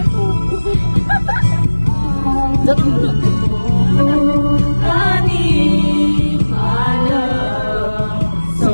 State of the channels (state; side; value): inverted; both; correlation -1.00